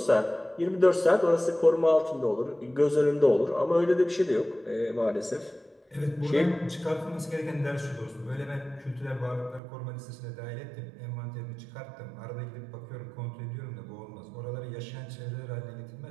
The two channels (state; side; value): drops out; left; at 9.6 s